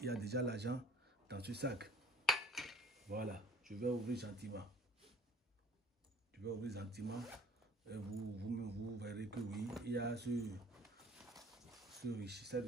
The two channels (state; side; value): normal; both; correlation 0.50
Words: y a déjà l'argent dans ce sac. Voilà, je vais ouvrir gentiment. Je vais ouvrir gentiment. Et vous verrez que oui, il y a cette